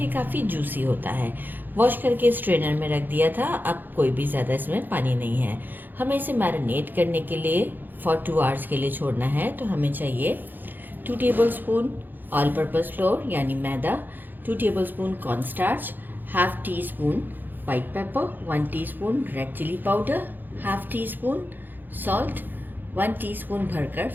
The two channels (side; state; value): left; late; 0.089 ms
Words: काफ़ी जूसी होता है। वॉश करके स्ट्रेनर में रख दिया था। अब कोई भी ज़्यादा इसमें पानी नहीं है। हमें इसे मैरिनेट करने के लिए फॉर 2 आवर्स के लिए छोड़ना है। तो हमें चाहिए 2 टेबलस्पून ऑल पर्पस फ्लोर यानी मैदा, 2 tablespoon cornstarch, half teaspoon white pepper, 1 teaspoon red chilli powder, half teaspoon salt, 1 teaspoon भरकर